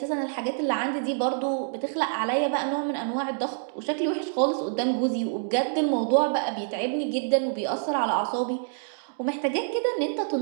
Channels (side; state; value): left; silent; digital silence